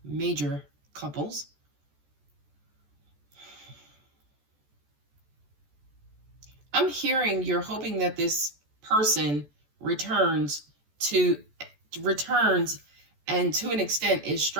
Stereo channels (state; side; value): late; left; 14 ms